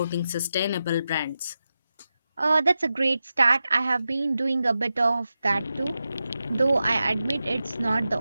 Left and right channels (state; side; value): inverted; both; correlation -0.91